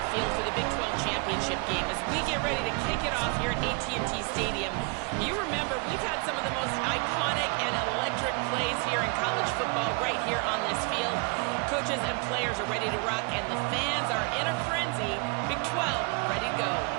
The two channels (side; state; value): left; quieter; 33.2 dB